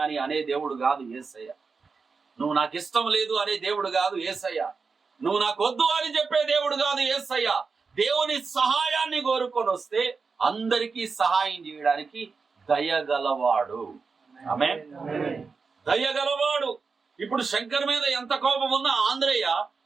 అని అనే దేవుడు కాదు యేసయ్య. నువ్వు నాకు ఇష్టం లేదు అనే దేవుడు కాదు యేసయ్య. నువ్వు నాకు వద్దు అని చెప్పే దేవుడు కాదు యేసయ్య. దేవుని సహాయాన్ని కోరుకొని వస్తే అందరికీ సహాయం చేయడానికి దయగలవాడు. ఆమేన్. దయగలవాడు. ఇప్పుడు శంకర్ మీద ఎంత కోపం ఉన్నా ఆంధ్రయ్య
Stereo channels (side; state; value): left; quieter; 4.8 dB